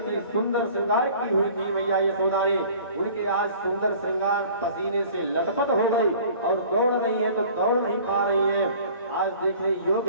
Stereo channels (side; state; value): both; inverted; correlation -0.48